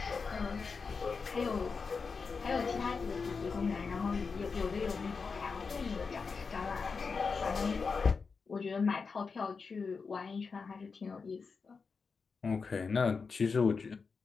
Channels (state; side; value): quieter; right; 5.0 dB